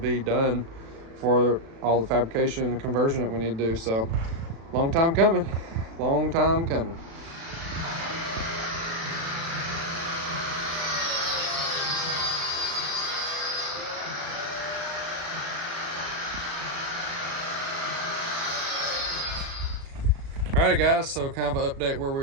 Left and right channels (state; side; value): late; left; 36 ms